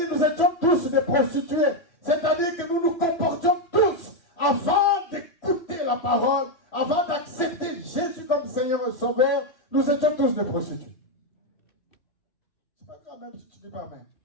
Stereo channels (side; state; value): right; late; 3.1 ms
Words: nous étions tous des prostituées. C'est-à-dire que nous nous comportions tous avant d'écouter la parole, avant d'accepter Jésus comme Seigneur et Sauveur. Nous étions tous des prostituées. C'est pas grave même si tu ne dis pas Amen.